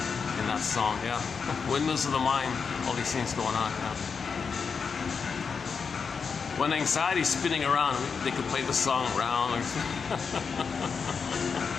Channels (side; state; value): right; quieter; 5.7 dB